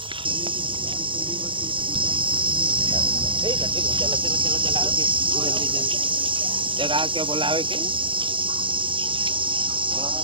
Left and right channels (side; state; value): left; late; 0.25 ms